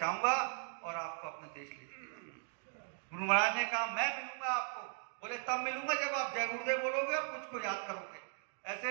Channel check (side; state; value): left; silent; 52 dB below the other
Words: और आपको अपने देश ले जाऊंगा। गुरु महाराज ने कहा मैं मिलूंगा आपको। बोले तब मिलूंगा जब आप जय गुरुदेव बोलोगे और मुझको याद करोगे।